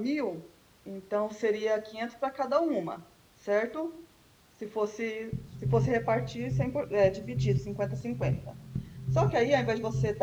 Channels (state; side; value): identical; both; correlation 1.00